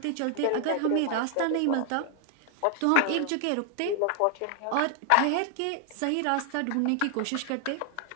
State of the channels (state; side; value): different; both; correlation 0.00